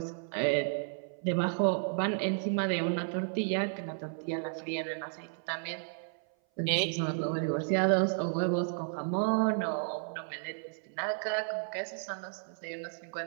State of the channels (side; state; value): left; silent; 56 dB below the other